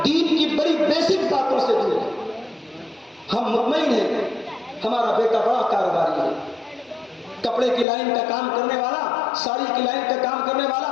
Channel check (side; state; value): right; drops out; at 7.9 s